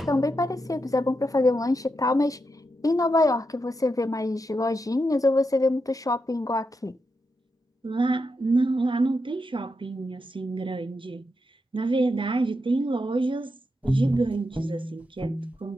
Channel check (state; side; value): normal; both; correlation 0.85